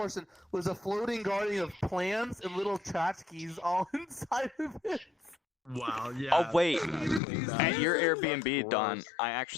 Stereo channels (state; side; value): drops out; right; at 7.2 s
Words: was a floating garden of plants and little tchotchkes all inside of it. Wow, yeah. Oh wait, at your Airbnb, Don, I